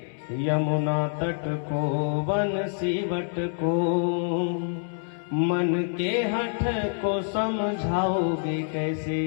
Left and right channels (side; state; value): right; silent; 60 dB below the other